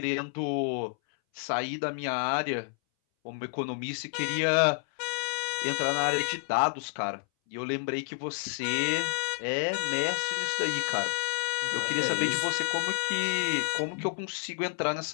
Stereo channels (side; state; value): right; silent; 58 dB below the other